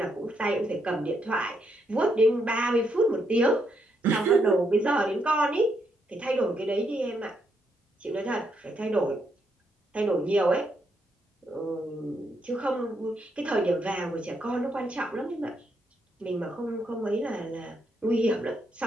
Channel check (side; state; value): both; normal; correlation 0.77